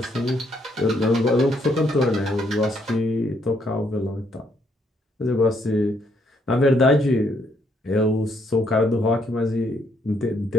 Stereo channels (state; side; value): normal; both; correlation 0.71